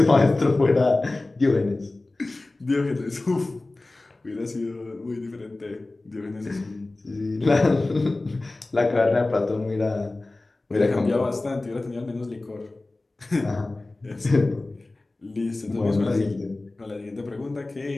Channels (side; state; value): right; quieter; 3.0 dB